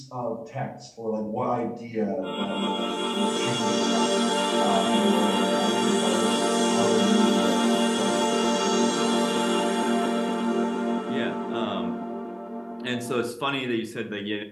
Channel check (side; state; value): both; identical; correlation 1.00